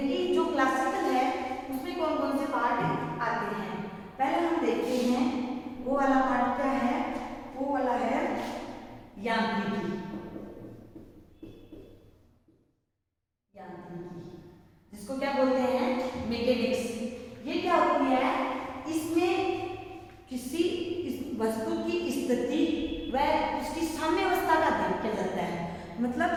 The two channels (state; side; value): identical; both; correlation 1.00